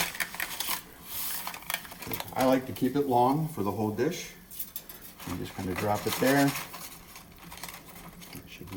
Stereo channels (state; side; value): identical; both; correlation 1.00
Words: I like to keep it long for the whole dish. You just kind of drop it there. It should